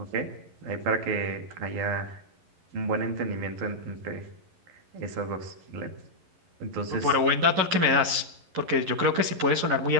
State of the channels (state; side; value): late; left; 11 ms